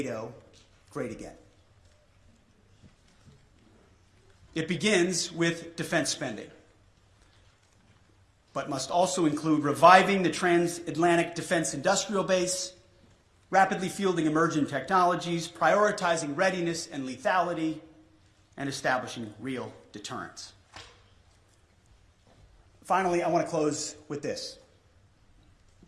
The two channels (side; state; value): both; identical; correlation 1.00